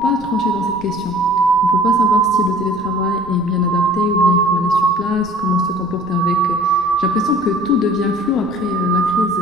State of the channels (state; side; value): noise; right; rumble, 22 dB below the sound